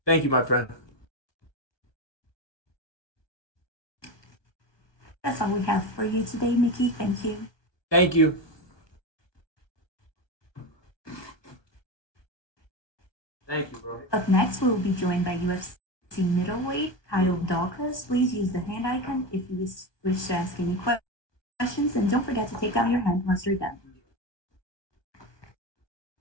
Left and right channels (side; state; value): right; late; 1.2 ms